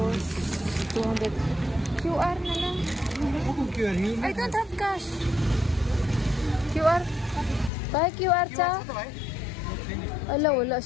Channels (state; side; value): drops out; right; at 7.7 s